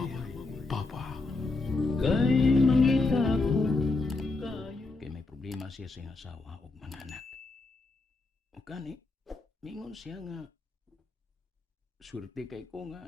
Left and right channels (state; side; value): quieter; right; 3.4 dB